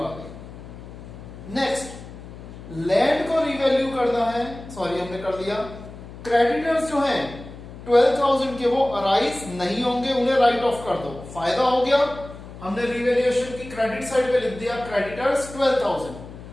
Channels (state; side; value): noise; left; hum, 15 dB below the sound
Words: गई। नेक्स्ट, लैंड को रिवैल्यू करना है, सॉरी हमने कर दिया। क्रेडिटर्स जो हैं 12,000 के वो अराइज नहीं होंगे, उन्हें राइट ऑफ कर दो, फायदा हो गया। हमने रिवैल्यूएशन की क्रेडिट साइड पे लिख दिया क्रेडिटर्स 12,000।